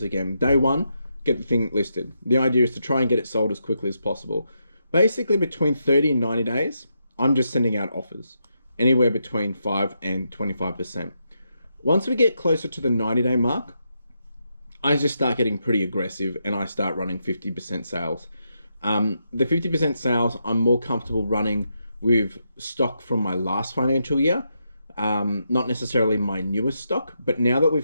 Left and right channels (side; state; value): both; inverted; correlation -0.82